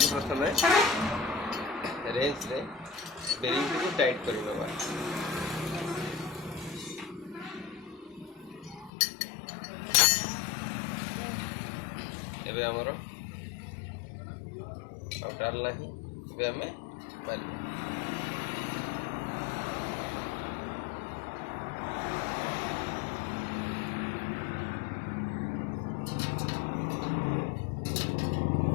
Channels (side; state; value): right; drops out; at 8.9 s